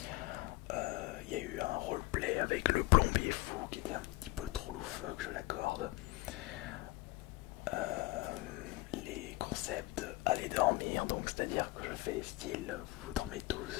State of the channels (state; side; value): quieter; right; 21.2 dB